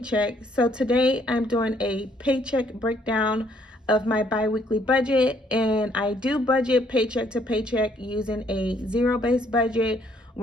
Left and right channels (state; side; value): normal; both; correlation 0.67